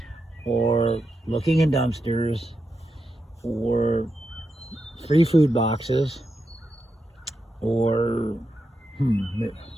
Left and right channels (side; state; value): both; normal; correlation 0.86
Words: or looking in dumpsters, or free food boxes, or